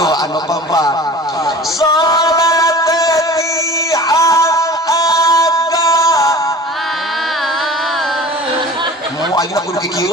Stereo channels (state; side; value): normal; both; correlation 0.41